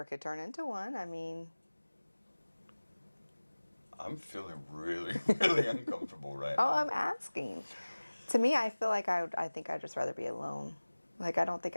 could turn into one. I mean... I'm feeling really, really uncomfortable right Oh, now. I'm asking. To me, I feel like I think I'd just rather be alone. Like, I don't think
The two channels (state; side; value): inverted; both; correlation -1.00